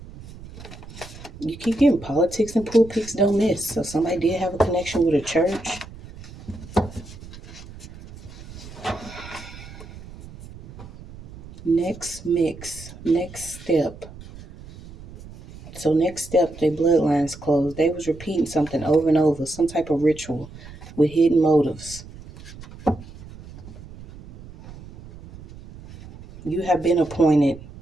You keep getting politics and pulpits don't miss. So somebody did have a connection with a church. Next mix. Next step. So next step, their bloodline's closed. They was repeating something over and over, some type of ritual with hidden motives. You have been appointed.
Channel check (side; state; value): right; noise; rumble, 17 dB below the sound